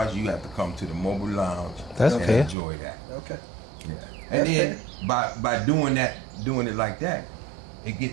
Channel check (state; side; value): drops out; left; at 2.6 s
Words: you have to come to the mobile lounge That's and fair. enjoy that. Okay. Yeah, and then by doing it like that,